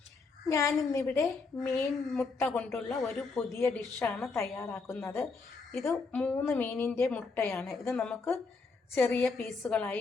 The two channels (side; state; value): right; quieter; 4.3 dB